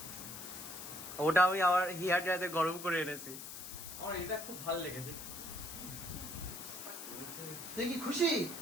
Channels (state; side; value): noise; left; hiss, 10 dB below the sound